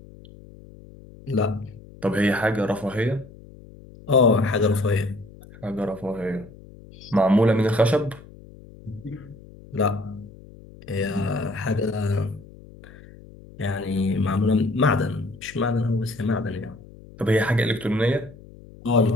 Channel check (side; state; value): left; noise; hum, 20 dB below the sound